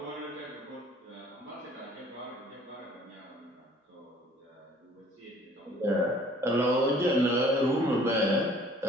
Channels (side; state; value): both; normal; correlation 0.54